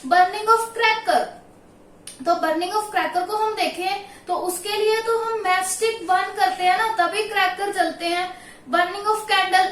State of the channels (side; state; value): both; identical; correlation 1.00